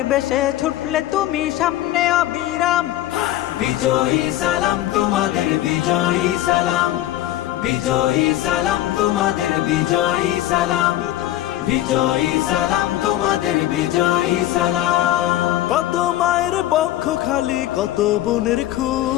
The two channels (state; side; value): quieter; right; 14.3 dB